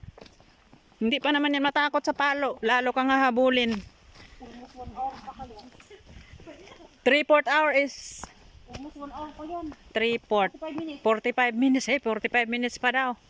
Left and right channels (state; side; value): identical; both; correlation 1.00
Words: Hindi pa naman yan matakot sa palo. Lalo kang hahabulin. Almost 1 hour pa kayo. 3/4 hour is Almost 1 hour pa yan. 3/4. 5 minutes. 45 minutes pa daw.